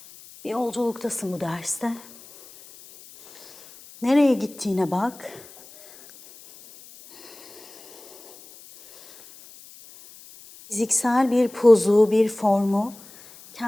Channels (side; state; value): left; noise; hiss, 21 dB below the sound